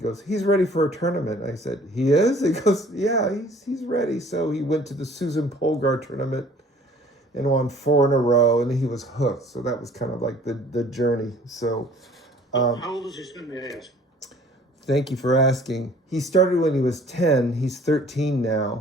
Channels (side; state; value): both; normal; correlation 0.53